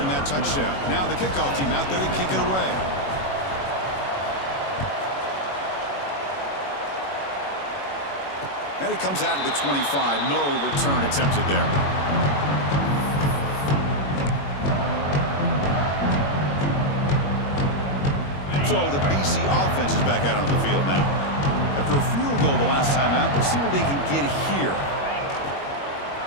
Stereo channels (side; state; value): right; late; 21 ms